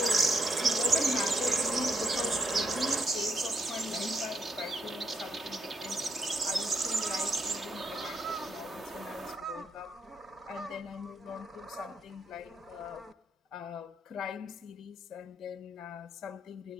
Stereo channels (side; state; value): both; normal; correlation 0.77